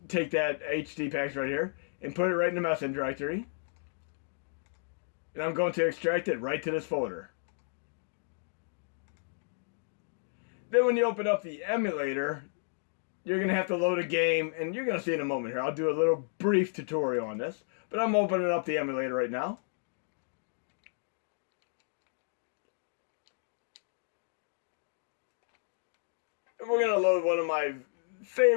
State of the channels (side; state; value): right; silent; digital silence